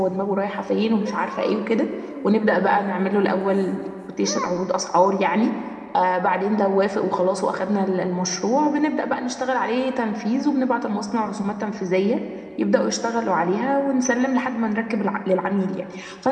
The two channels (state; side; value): identical; both; correlation 1.00